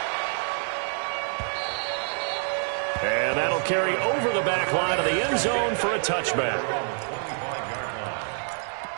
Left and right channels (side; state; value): left; silent; 60 dB below the other